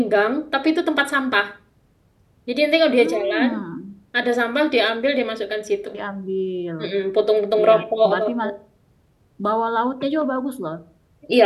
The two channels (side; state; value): both; identical; correlation 1.00